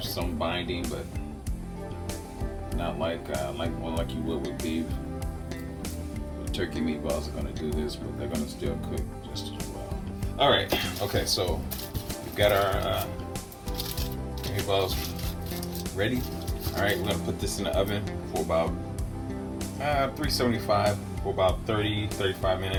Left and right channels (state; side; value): identical; both; correlation 1.00